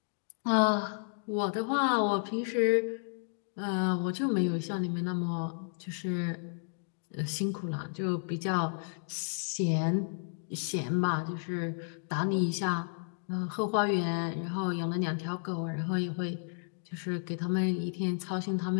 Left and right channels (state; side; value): silent; right; digital silence